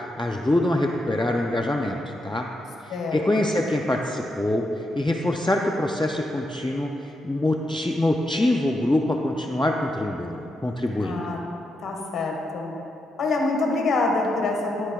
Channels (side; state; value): both; normal; correlation 0.83